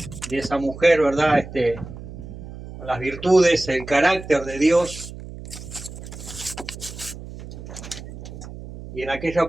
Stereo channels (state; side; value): noise; right; hum, 12 dB below the sound